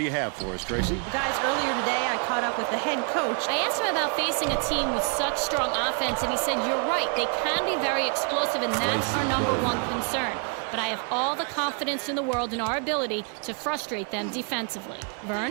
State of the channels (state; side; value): quieter; left; 39.4 dB